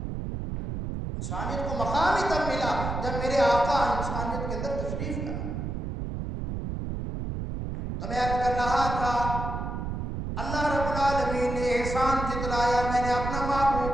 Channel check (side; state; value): right; noise; rumble, 4 dB below the sound